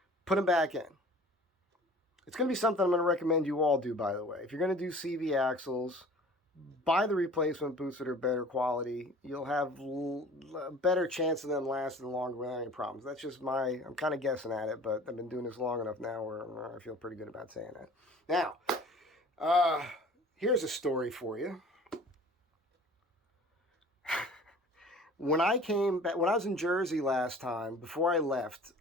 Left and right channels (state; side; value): normal; both; correlation 0.46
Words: put them back in. It's going to be something I'm going to recommend you all do, by the way. If you're going to do CV axles, buy the replacement boots that are better quality. You'll have a better chance of them lasting longer without any problems. That's just I'm kind of guessing at it, but I've been doing this long enough now where I feel pretty good about saying that. Now, here's a story for you. When I was in Jersey last time, before I left,